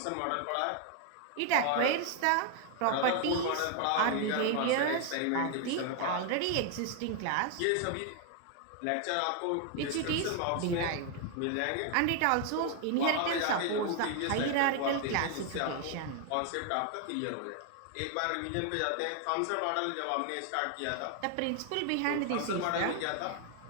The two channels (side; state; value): both; different; correlation 0.00